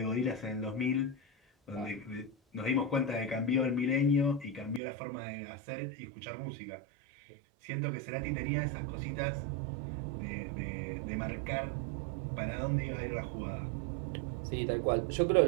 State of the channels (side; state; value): left; drops out; at 4.8 s